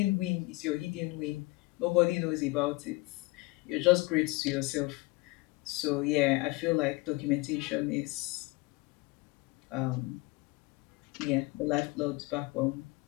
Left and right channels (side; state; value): right; quieter; 23.0 dB